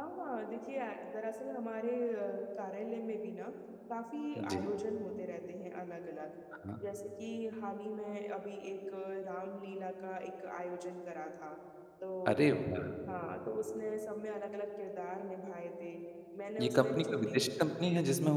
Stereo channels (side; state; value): both; identical; correlation 1.00